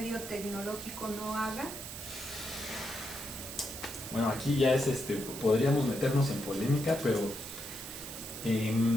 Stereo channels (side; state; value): right; noise; hiss, 10 dB below the sound